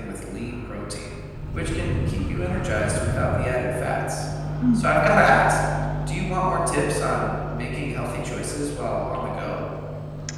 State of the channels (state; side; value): identical; both; correlation 1.00